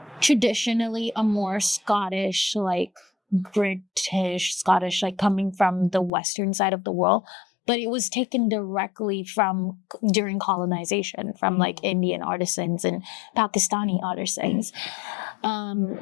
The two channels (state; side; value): drops out; right; at 6.1 s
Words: traditionally a more Scottish, like British, Scottish, like coming from the western side of the world. But it was taken directly from during colonization from like Indian artisans and Pakistani artisans.